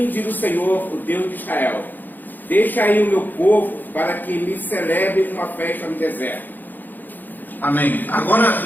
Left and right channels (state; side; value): late; right; 0.087 ms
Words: diz o Senhor, o Deus de Israel: deixa aí o meu povo para que me celebre uma festa no deserto. Amém. Agora